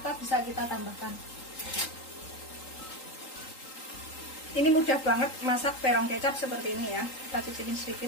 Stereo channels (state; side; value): late; right; 3.8 ms